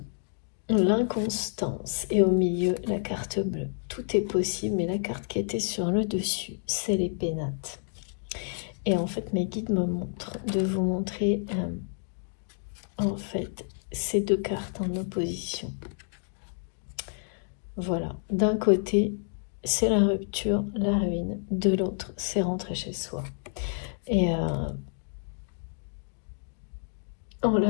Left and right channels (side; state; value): right; silent; digital silence